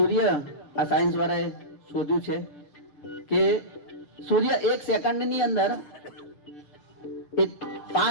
આ સાયન્સ વાળાએ શોધ્યું છે કે સૂર્ય 1 સેકન્ડની અંદર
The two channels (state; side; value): late; right; 6.8 ms